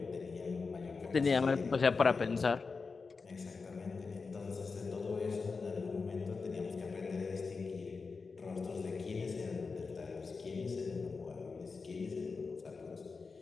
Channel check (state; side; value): quieter; right; 4.6 dB